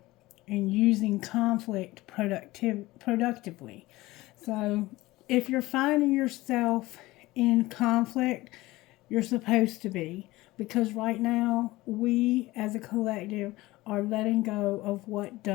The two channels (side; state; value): right; quieter; 19.1 dB